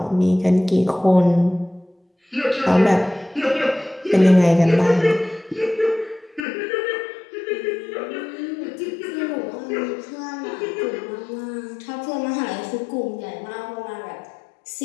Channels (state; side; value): drops out; right; at 6.5 s